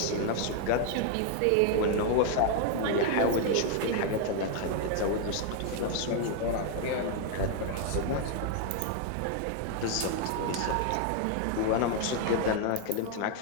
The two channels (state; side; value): different; both; correlation 0.00